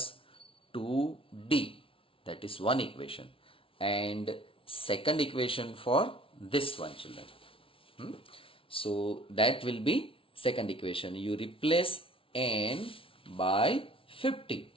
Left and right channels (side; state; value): right; late; 0.26 ms